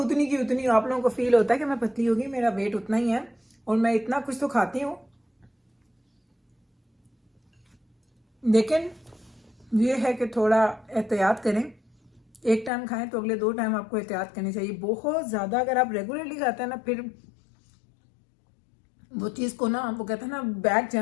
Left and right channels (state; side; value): drops out; right; at 12.7 s